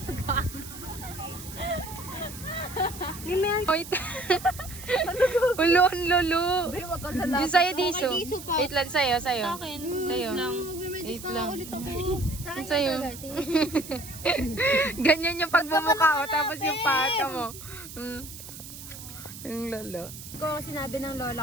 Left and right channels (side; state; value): right; noise; hiss, 13 dB below the sound